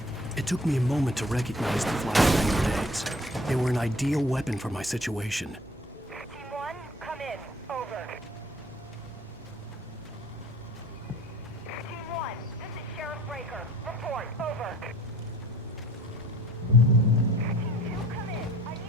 It took me a moment to recognize the flashbang grenades. They were an ideal weapon for my situation. Team 1, come in. Over. Team 1, this is Sheriff Breaker. Report. Over. Team 2, come in. I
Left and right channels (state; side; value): normal; both; correlation 0.52